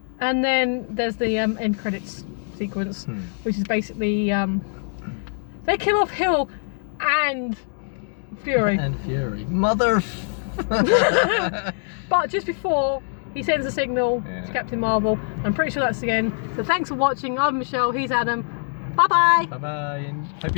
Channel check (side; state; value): right; silent; 63 dB below the other